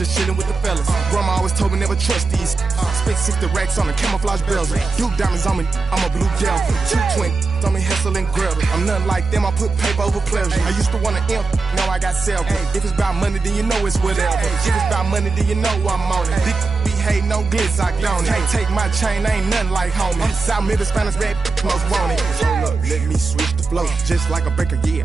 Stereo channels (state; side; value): quieter; left; 4.2 dB